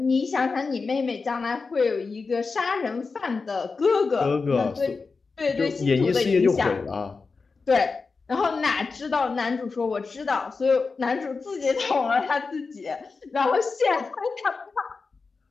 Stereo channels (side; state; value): right; quieter; 4.4 dB